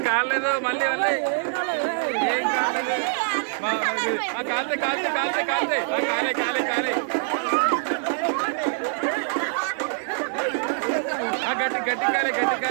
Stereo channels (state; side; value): silent; left; 60 dB below the other